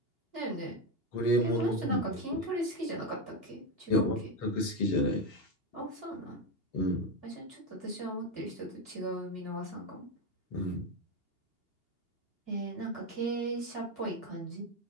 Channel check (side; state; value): right; late; 2.8 ms